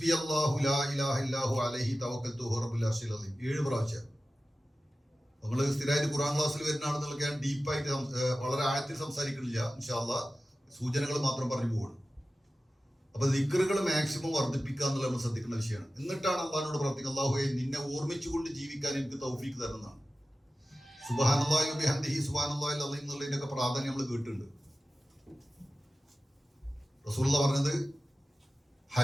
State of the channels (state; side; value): normal; both; correlation 0.95